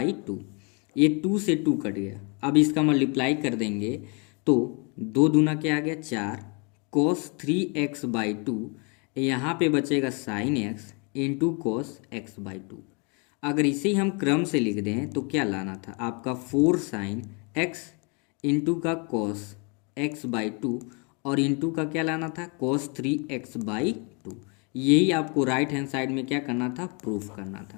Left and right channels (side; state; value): right; quieter; 33.5 dB